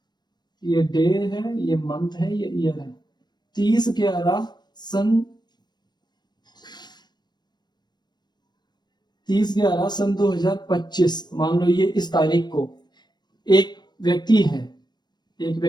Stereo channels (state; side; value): late; right; 0.21 ms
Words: ये डे है, ये मंथ है, ये ईयर है। 30/11 सन 2025, मान लो ये इस तारीख को एक व्यक्ति है, एक